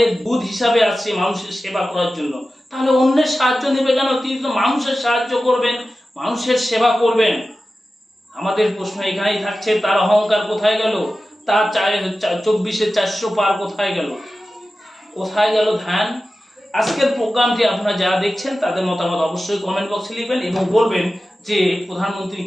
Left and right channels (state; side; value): normal; both; correlation 0.94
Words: দূত হিসাবে আসছি মানুষের সেবা করার জন্য। তাহলে অন্যের সাহায্য নেবে কেন? তিনি তো মানুষের সাহায্য করবেন, মানুষের সেবা করবেন। আমাদের প্রশ্ন এখানেই থাকছে, তার অহংকার কোথায় গেল? তার 24-এ 400 পার কোথায় গেল? কোথায় গেল ধ্যান? আজকের প্রোগ্রামটি আপনারা যারা দেখছেন তাদের মতামত অবশ্যই কমেন্ট বক্সে লিখবেন এবং বলবেন যে প্রধানমন্ত্রী